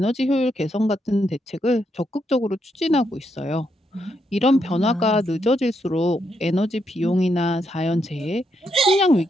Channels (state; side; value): normal; both; correlation 0.79